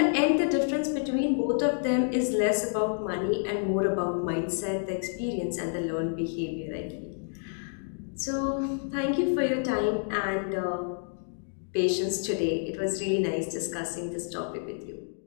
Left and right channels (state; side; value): silent; right; digital silence